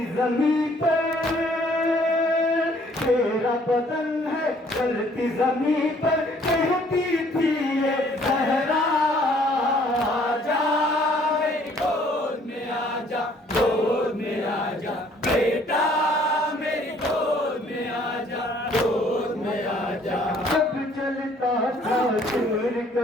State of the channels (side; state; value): both; normal; correlation 0.60